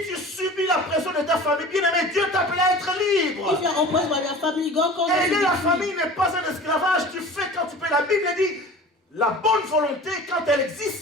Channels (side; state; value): both; normal; correlation 0.39